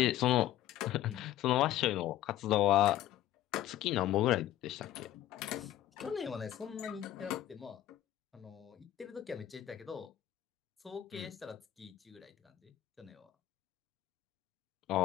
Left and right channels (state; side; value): quieter; right; 13.1 dB